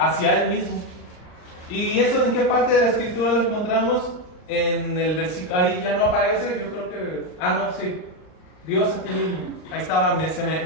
Él mismo. ¿Y eso en qué parte de la escritura lo encontramos? En el versículo, ahí ya no aparece, yo creo que, no, sí, Dios a ti mismo. Ahí estaba, se me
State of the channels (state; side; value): late; right; 39 ms